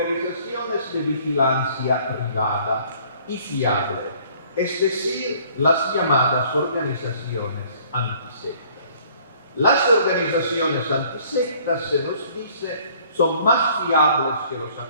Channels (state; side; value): inverted; both; correlation -0.57